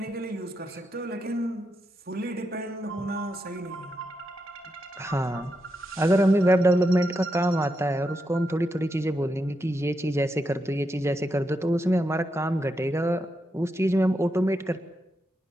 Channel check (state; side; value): normal; both; correlation 0.84